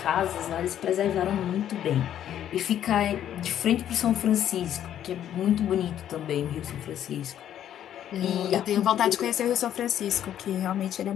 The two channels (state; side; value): quieter; right; 10.7 dB